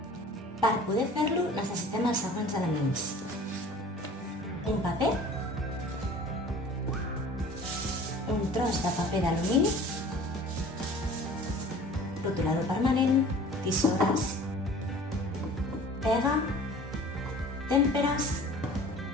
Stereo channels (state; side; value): normal; both; correlation 0.45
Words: Per poder fer-lo necessitem els següents elements. Un paper, un tros de paper d'alumini, rotulador permanent, tisores, pega, tèmperes